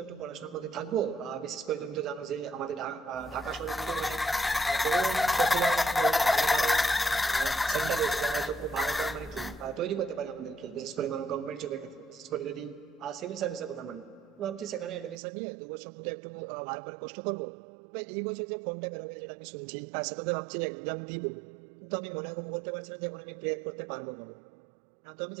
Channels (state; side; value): drops out; left; at 15.2 s